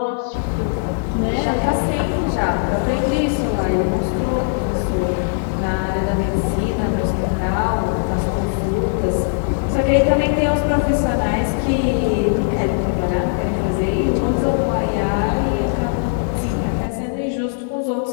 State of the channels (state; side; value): silent; right; digital silence